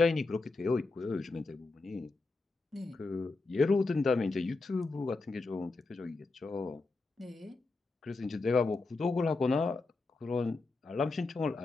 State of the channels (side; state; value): right; quieter; 3.6 dB